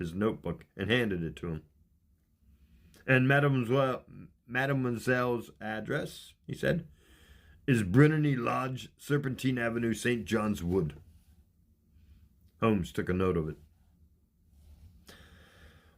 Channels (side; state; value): both; identical; correlation 1.00